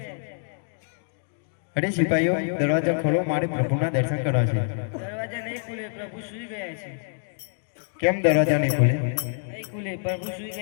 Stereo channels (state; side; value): silent; right; digital silence